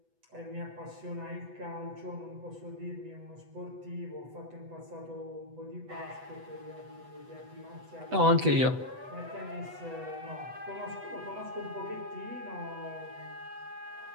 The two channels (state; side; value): late; left; 8.0 ms